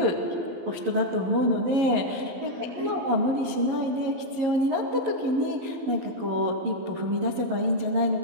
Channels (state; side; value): late; left; 11 ms